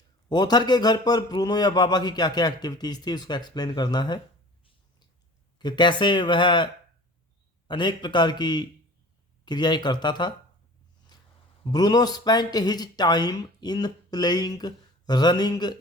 Author के घर पर ब्रूनो या बाबा की क्या क्या एक्टिविटीज थी, उसको एक्सप्लेन करना है कि कैसे वह अनेक प्रकार की क्रियाएं करता था। Bruno spent his time in playing, running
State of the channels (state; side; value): normal; both; correlation 0.43